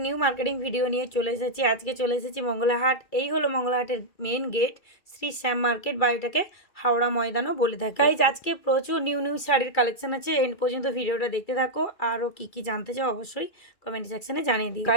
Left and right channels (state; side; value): late; right; 2.3 ms